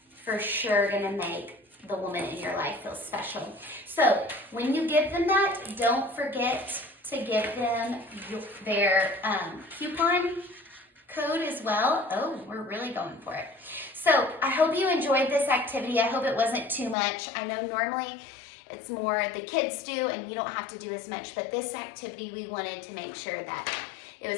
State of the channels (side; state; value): right; drops out; at 16.9 s